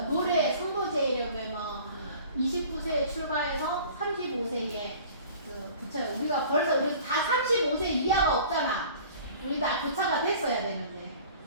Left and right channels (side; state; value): both; inverted; correlation -0.47